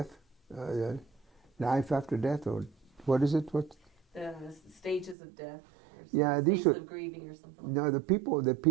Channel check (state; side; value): drops out; left; at 5.2 s